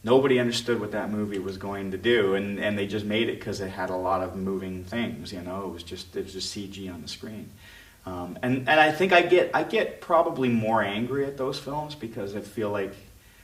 nobody understood what that movie was going to do, and they just made it because it had a lot of moving things, you know. It was just CG on the screen. And I think I get probably more angry at those films because I feel like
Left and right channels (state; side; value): identical; both; correlation 1.00